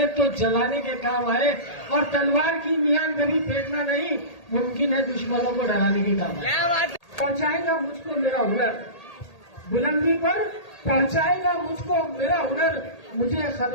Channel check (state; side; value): late; right; 1.8 ms